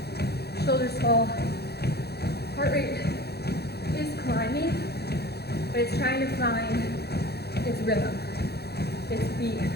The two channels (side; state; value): right; late; 0.47 ms